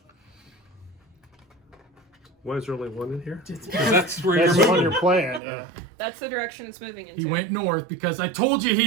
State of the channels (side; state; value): left; drops out; at 5.4 s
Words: Why is there only one in here? 'Cause that's where that's you're the one moving. you're playing. Yeah. That's the direction it's moving into. He went north because I told you